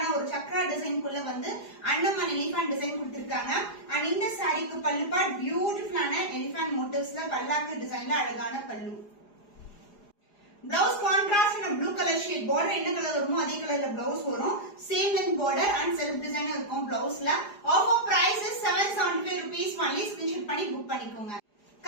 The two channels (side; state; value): right; late; 4.9 ms